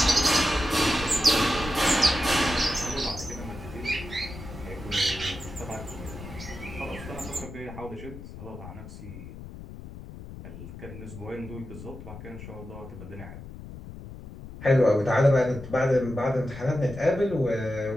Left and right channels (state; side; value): noise; left; rumble, 13 dB below the sound